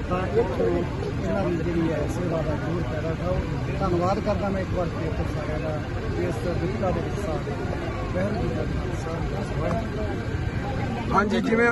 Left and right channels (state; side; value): identical; both; correlation 1.00